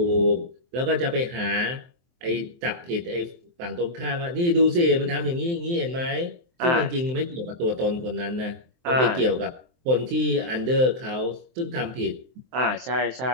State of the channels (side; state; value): left; late; 23 ms